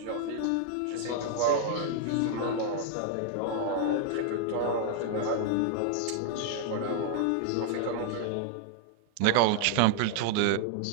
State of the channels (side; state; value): both; different; correlation 0.00